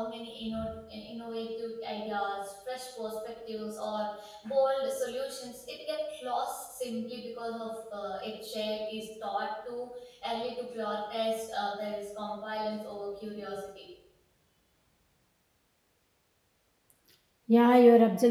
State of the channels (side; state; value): both; identical; correlation 1.00